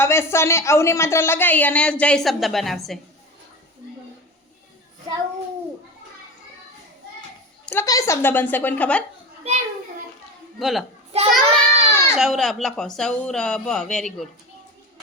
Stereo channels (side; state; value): both; normal; correlation 0.27